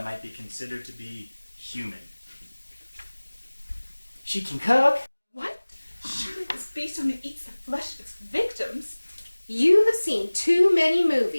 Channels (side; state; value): both; inverted; correlation -1.00